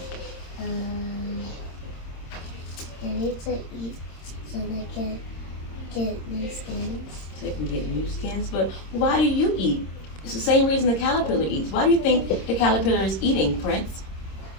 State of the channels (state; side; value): late; right; 26 ms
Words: they need to eat so they can get new skins. So they can get new skins. But why do you eat? It's the same reason the caterpillar eats. Why do you think the caterpillar is eating, Prince?